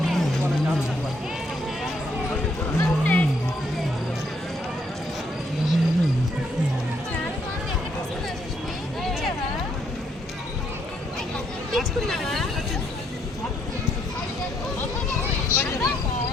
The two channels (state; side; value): normal; both; correlation 0.72